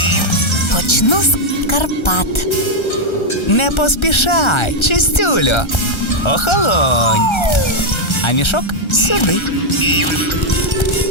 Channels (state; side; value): late; right; 1.3 ms